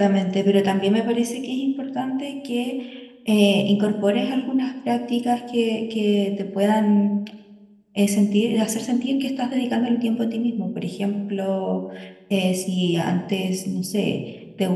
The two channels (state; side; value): identical; both; correlation 1.00